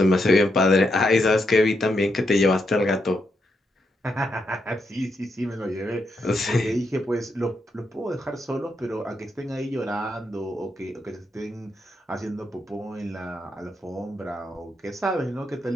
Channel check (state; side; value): normal; both; correlation 0.81